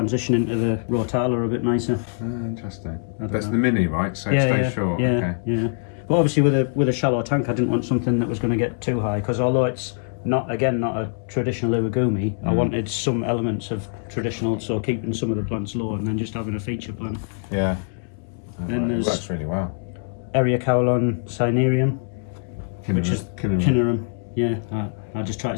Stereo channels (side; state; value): right; silent; 63 dB below the other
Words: into the Rotala a bit nicer. Interesting. That's the mini, right? So it stays short. Yeah, okay. Yeah. But obviously with a shallow tank, I didn't want something that was going to get too high, because although it's not a traditional urigumi, I wanted some elements of traditional, so keeping some of the plants low and then just having a feature plant. Yeah. Then there's works really well. Eriocaulon cinerum, which is cinerum. Yeah, I just try to